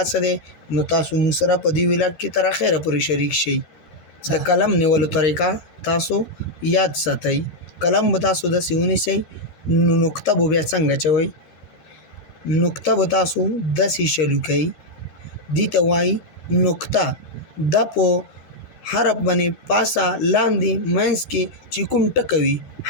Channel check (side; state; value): right; late; 13 ms